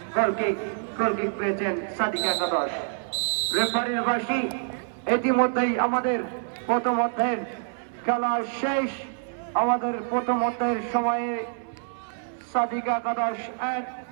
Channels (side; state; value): left; silent; 59 dB below the other